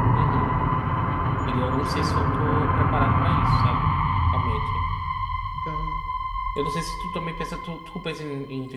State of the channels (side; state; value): both; identical; correlation 1.00